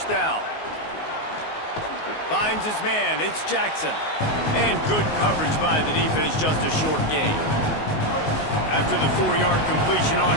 down. Finds his man. It's Jackson. And good coverage by the defense, just a short gain. After the 4-yard completion on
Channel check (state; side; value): late; right; 19 ms